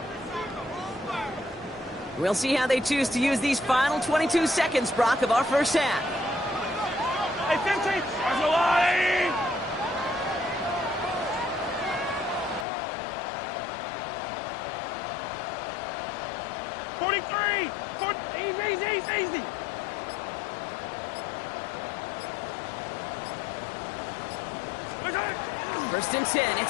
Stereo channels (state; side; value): drops out; right; at 12.7 s